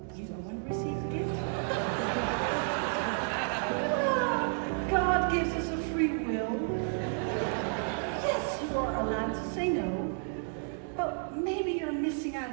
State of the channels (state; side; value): silent; left; 56 dB below the other